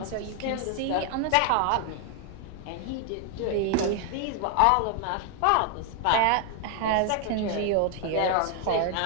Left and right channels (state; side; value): different; both; correlation 0.00